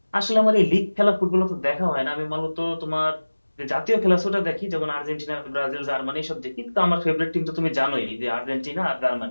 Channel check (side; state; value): both; inverted; correlation -1.00